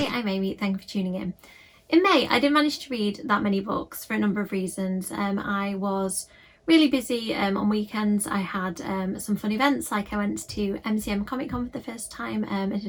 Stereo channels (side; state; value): both; identical; correlation 1.00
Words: I'm Amy, thank you for tuning in. In May, I didn't manage to read that many books for a number of reasons. I was really busy on weekends. I had some fun events, like I went to MCM Comic Con for the first time. I